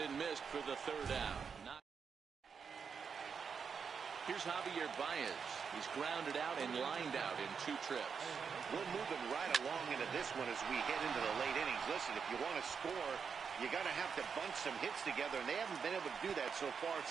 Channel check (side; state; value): left; quieter; 6.2 dB